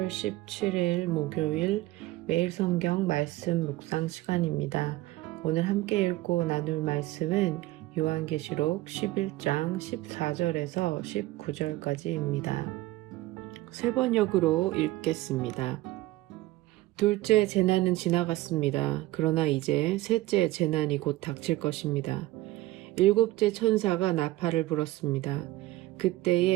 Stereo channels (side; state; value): left; quieter; 17.6 dB